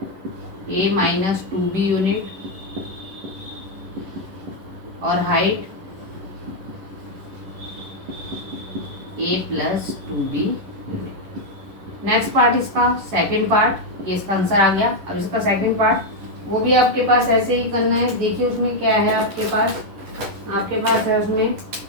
a minus 2b unit और height a plus 2b unit. Next part इसका सेकंड पार्ट, ये इसका आंसर आ गया। अब इसका सेकंड पार्ट वो भी आपके पास ऐसे ही करना है। देखिए उसमें क्या है आपके पास है उसमें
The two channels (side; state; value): left; late; 11 ms